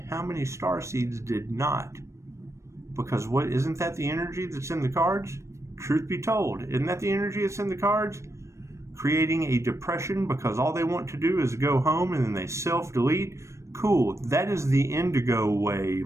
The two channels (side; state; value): left; late; 0.14 ms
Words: many star seeds did not? Because isn't that the energy that's in the cards? Truth be told, isn't that the energy that's in the cards? Creating a depression because all they want to do is go home and then they self-delete? Cool, that is the indigo